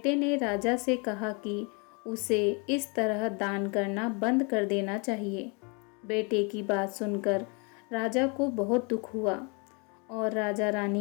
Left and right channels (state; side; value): quieter; right; 33.0 dB